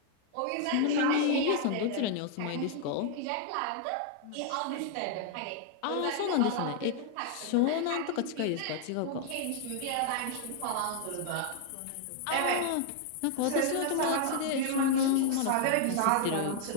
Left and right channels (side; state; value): both; different; correlation 0.00